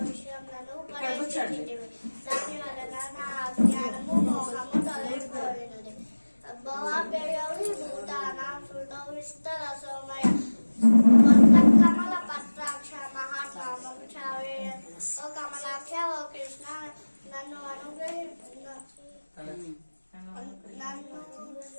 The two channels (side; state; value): both; inverted; correlation -1.00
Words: విషయములను ఉపదేశించితివి, దాని వలన నా అజ్ఞానము మోహము తొలగిపోయినది. భవాభ్యయౌ భూతానాం శృతౌ విస్తరసోమయ కమల పత్రాక్ష మహాత్మామం చావేయ. ఓ కమలాక్ష, ఓ కృష్ణ నన్ను